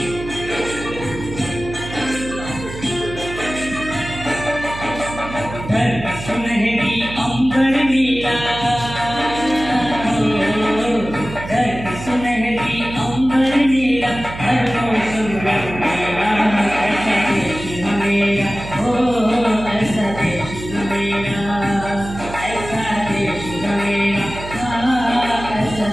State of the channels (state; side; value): noise; right; hum, 11 dB below the sound